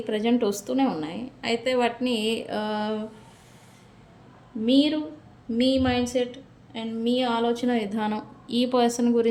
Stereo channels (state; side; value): identical; both; correlation 1.00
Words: ప్రజెంట్ వస్తూనే ఉన్నాయి. అయితే వాటిని మీరు మీ మైండ్ సెట్ అండ్ మీ ఆలోచన విధానం ఈ పర్సన్